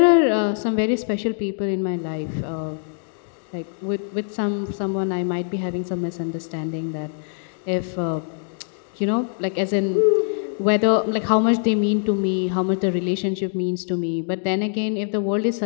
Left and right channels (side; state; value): right; silent; digital silence